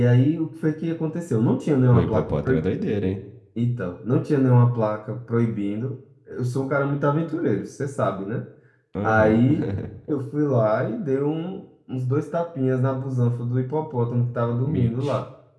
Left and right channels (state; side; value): identical; both; correlation 1.00